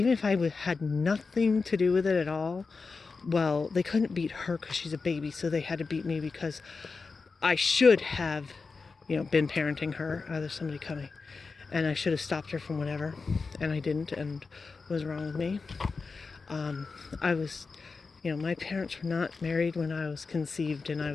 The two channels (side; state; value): right; quieter; 4.4 dB